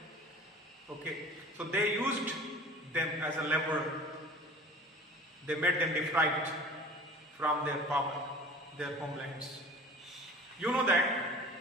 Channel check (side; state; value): both; normal; correlation 0.43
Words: Okay. So they used them as a lever. They made them deprived from their power, their homelands. You know that